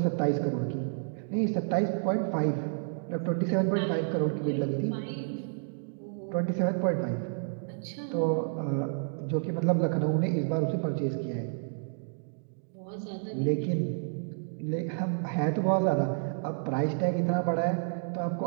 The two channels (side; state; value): left; silent; digital silence